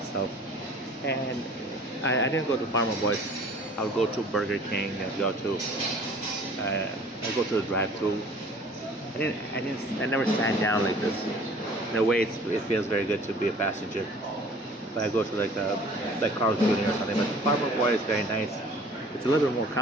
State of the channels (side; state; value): both; normal; correlation 0.50